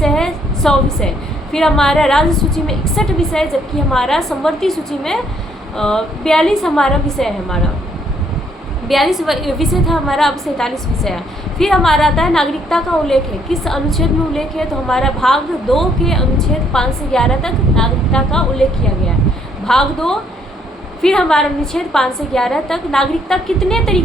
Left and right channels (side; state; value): both; normal; correlation 0.68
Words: है 100 विषय, फिर हमारा राज्य सूची में 61 विषय, जबकि हमारा संवर्ती सूची में 42 हमारा विषय है, हमारा 42 विषय था हमारा, अब 47 विषय है। फिर हमारा आता है नागरिकता का उल्लेख है, किस अनुच्छेद में उल्लेख है, तो हमारा भाग 2 के अनुच्छेद 5 से 11 तक नागरिकता का उल्लेख किया गया है, भाग 2। फिर हमारा अनुच्छेद 5 से 11 तक नागरिकता कितने